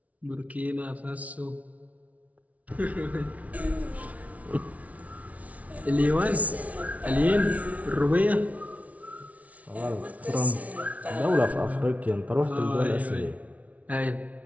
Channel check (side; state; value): left; late; 0.068 ms